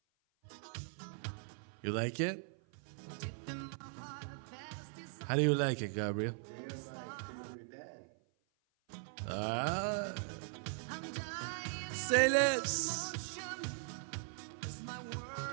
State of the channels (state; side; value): silent; left; 51 dB below the other